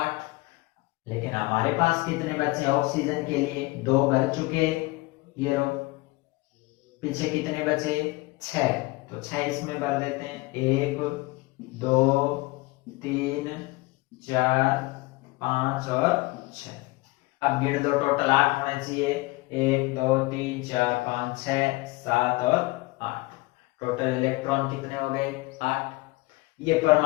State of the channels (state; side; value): quieter; right; 22.6 dB